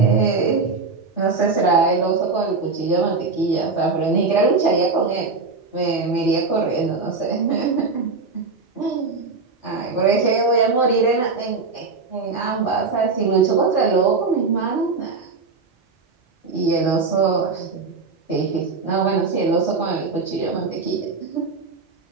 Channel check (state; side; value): quieter; left; 4.2 dB